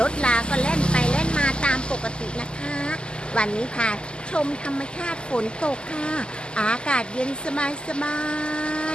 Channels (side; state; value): right; late; 0.049 ms